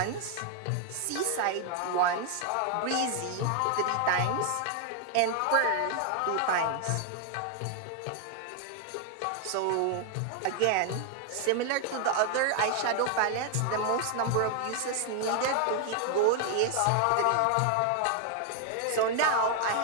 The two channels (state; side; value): different; both; correlation 0.00